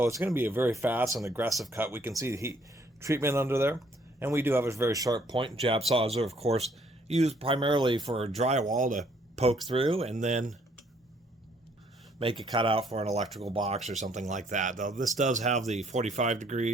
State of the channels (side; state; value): both; normal; correlation 0.65